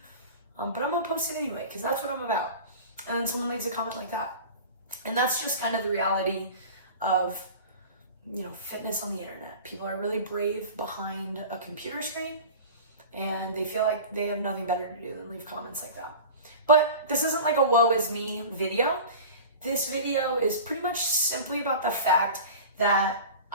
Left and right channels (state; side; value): inverted; both; correlation -0.36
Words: but I'm gonna post it anyway because that's what I'm about. And then someone leaves a comment like that. And that's just kind of the reality of, fitness on the internet. People are really brave behind a computer screen and they feel like they have nothing better to do than leave comments like that. But this isn't like a woe is me video. This video is pretty much simply about the fact that